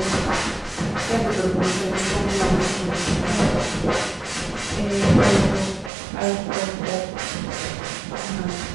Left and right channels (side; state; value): left; drops out; at 5.9 s